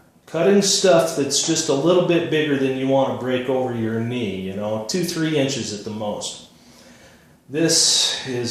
Cutting stuff that's just a little bit bigger than you want to break over your knee, you know, 2-3 inches at the most. This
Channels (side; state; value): both; identical; correlation 1.00